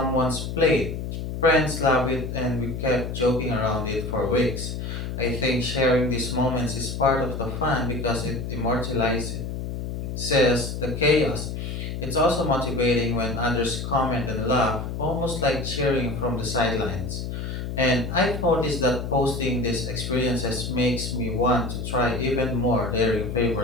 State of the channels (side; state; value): left; noise; hum, 5 dB below the sound